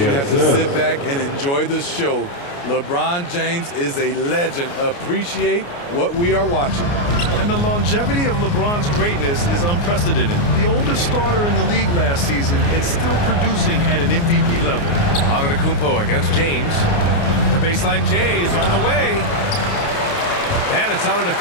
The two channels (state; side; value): late; right; 29 ms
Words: you have to sit back and enjoy the show. LeBron James is a legend. Appreciate what we are watching. And the longevity of LeBron's greatness is unprecedented. The oldest starter in the league last season and still producing at an MVP level. Antetokounmpo against James. The baseline J is on the way. And it's